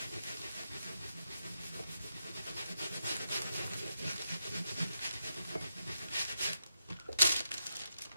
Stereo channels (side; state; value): both; inverted; correlation -0.86